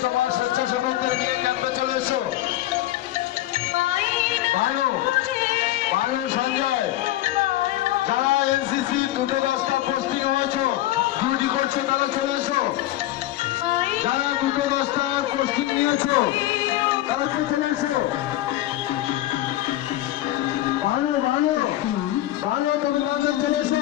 তোমার স্বেচ্ছাসেবকদের নিয়ে ক্যাম্পে চলে এসো। ভালো ভালো সঞ্জয়, যারা এনসিসি 2-10টা পোস্টিং হয়েছে, ডিউটি করছে, তারা চলে এসো। যারা 2-10টা পোস্টিং নিয়েছো তারা চলে এসো। ভালো ভালো ভালো, তোমরা চলে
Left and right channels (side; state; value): right; quieter; 14.9 dB